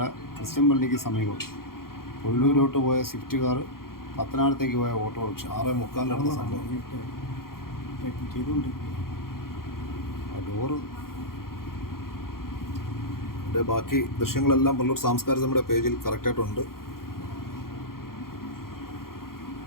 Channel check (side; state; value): right; late; 0.92 ms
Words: ക്രിസ്ത്യൻ പള്ളിക്ക് സമീപം പുനലൂരോട്ട് പോയ സ്വിഫ്റ്റ് കാർ പത്തനാപുരത്തേക്ക് പോയ ഓട്ടോറിക്ഷ 6:45 നടന്ന സംഭവം. ഡോറ് ബാക്കി ദൃശ്യങ്ങളെല്ലാം പുനലൂർ സാംസ്കാരിക നമ്മുടെ പേജിൽ കറക്റ്റായിട്ടുണ്ട്.